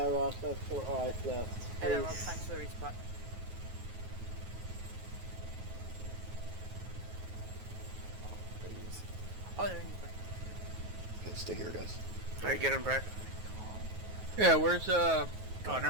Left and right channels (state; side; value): late; left; 9.4 ms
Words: Ross, that's alright left. Hello, Rob, thanks for the resupply. Oh, they're in the back. Okay, stay here, guys. Alright, get him, Brad. Yeah, where's oh,